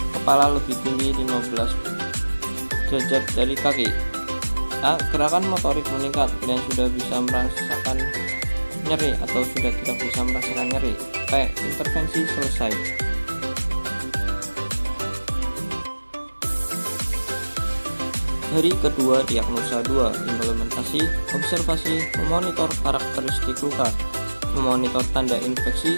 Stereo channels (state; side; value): inverted; both; correlation -1.00